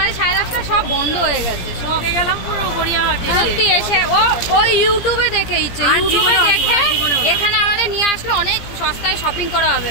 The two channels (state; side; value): late; right; 17 ms